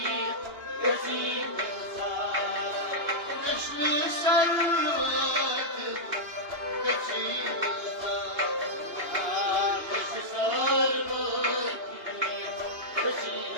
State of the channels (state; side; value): late; left; 2.9 ms